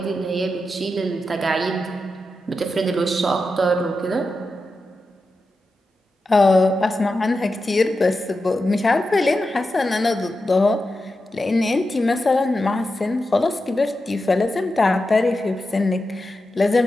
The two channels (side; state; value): both; normal; correlation 0.90